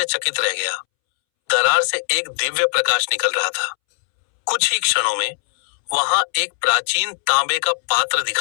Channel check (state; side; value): silent; right; 66 dB below the other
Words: रह गया। दरार से एक दिव्य प्रकाश निकल रहा था। कुछ ही क्षणों में वहां एक प्राचीन तांबे का पात्र